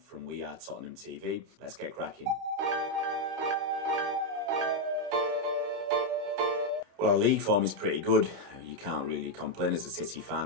WeAreTottenhamTV. Let's get cracking. Well, our league form is pretty good. You can't really complain as a City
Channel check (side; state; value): left; late; 30 ms